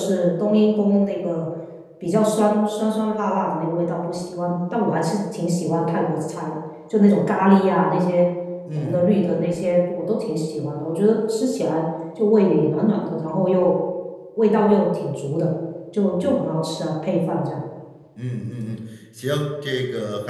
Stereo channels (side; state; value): both; identical; correlation 1.00